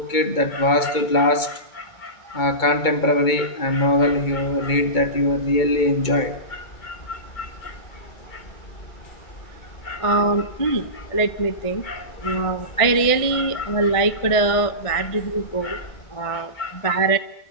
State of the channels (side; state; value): right; late; 2.2 ms